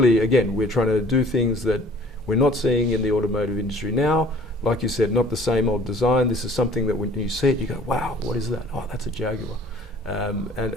again, we're trying to do things that we're not seeing in the automotive industry now. Like you said, not the same old design. This is something that when you see it, you go, wow, what is that? Oh, that's a Jaguar.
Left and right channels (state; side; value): normal; both; correlation 0.51